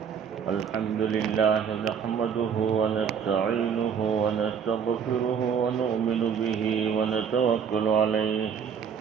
لله نحمده ونستعينه ونستغفره ونؤمن به ونتوكل عليه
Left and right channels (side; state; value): left; quieter; 7.2 dB